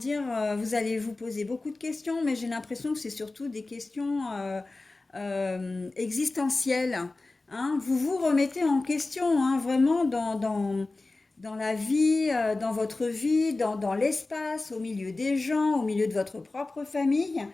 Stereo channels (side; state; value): right; quieter; 3.3 dB